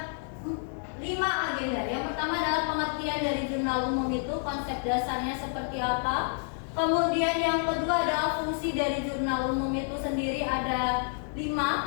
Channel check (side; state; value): right; silent; 59 dB below the other